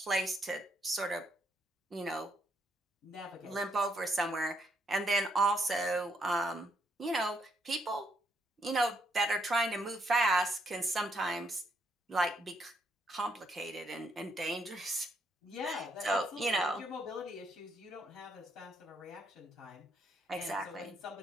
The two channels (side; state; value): both; normal; correlation 0.74